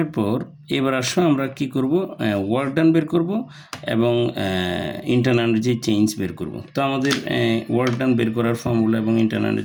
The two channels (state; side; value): identical; both; correlation 1.00